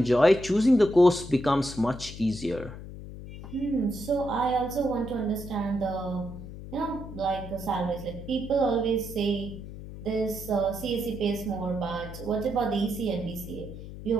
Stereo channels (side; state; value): left; noise; hum, 12 dB below the sound